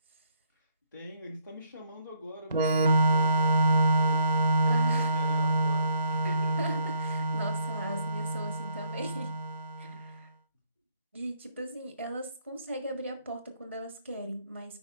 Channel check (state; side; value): inverted; both; correlation -0.69